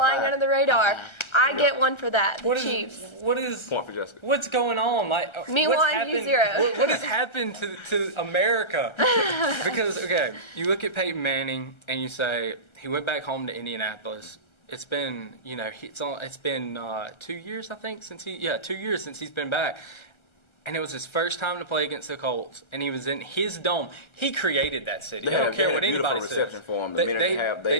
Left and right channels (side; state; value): right; late; 1.3 ms